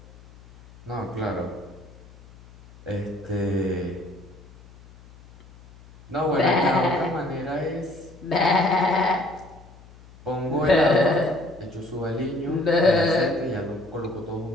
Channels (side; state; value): left; noise; hum, 22 dB below the sound